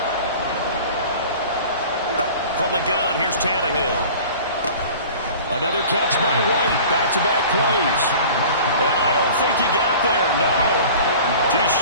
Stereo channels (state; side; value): inverted; both; correlation -0.42